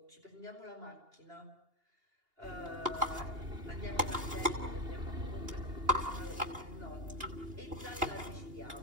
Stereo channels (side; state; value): left; late; 2.8 ms